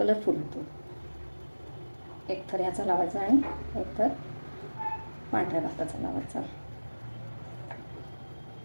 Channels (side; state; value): both; inverted; correlation -1.00